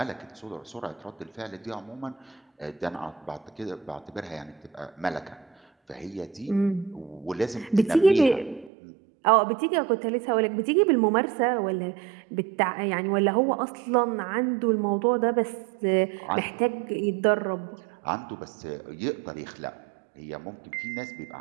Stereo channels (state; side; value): drops out; left; at 8.7 s